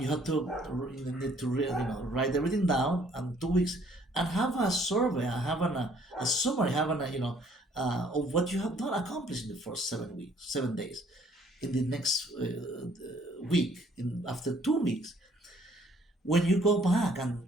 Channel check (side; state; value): both; normal; correlation 0.61